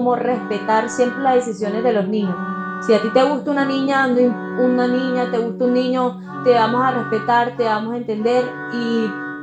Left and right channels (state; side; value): identical; both; correlation 1.00